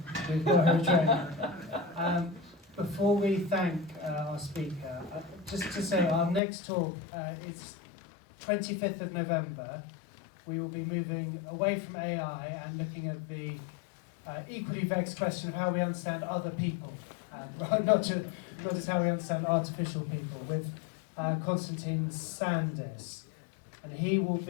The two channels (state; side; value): drops out; right; at 6.4 s